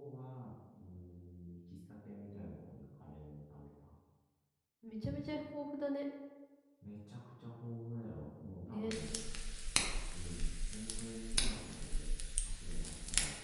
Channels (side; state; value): both; identical; correlation 1.00